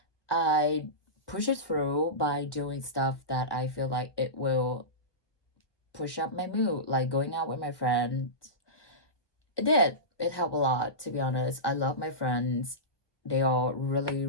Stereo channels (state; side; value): late; right; 1.3 ms